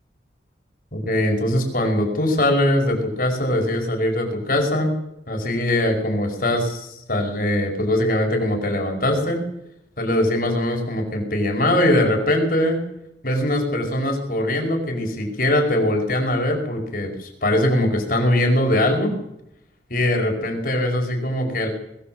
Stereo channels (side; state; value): both; normal; correlation 0.46